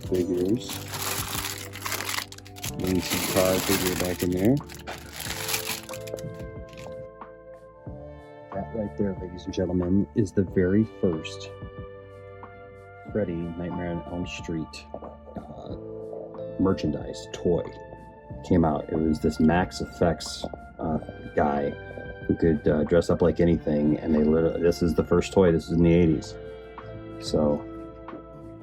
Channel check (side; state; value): both; identical; correlation 1.00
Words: Lindsay car figure back in there. That right there, ladies and gentlemen, is the very first Freddy Nightmare on Elm Street merchandise toy came out. It was this Max Effects guy who could dress up like anything, and this is the first toy. This is in the 80s, so